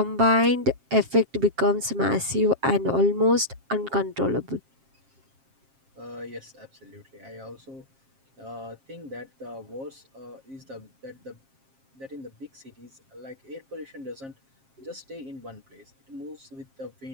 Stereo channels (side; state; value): left; late; 7.5 ms